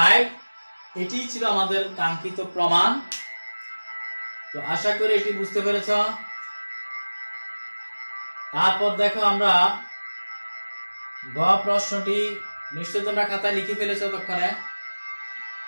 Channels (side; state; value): both; inverted; correlation -1.00